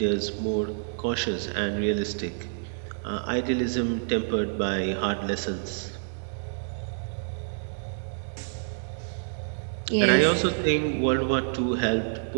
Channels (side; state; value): left; silent; digital silence